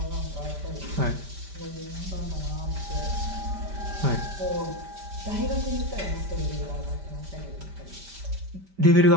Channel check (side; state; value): left; late; 5.1 ms